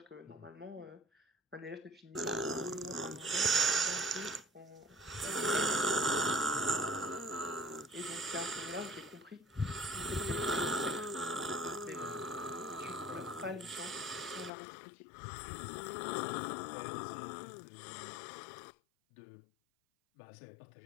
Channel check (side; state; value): right; drops out; at 14.5 s